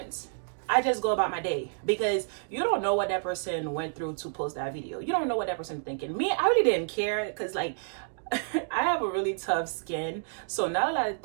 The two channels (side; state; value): left; silent; digital silence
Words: I just go about my day, because you don't know what that person went through to post that video. You don't know what that person thinking. Me, I really didn't care, because, like, I have a really tough skin, so not a lot of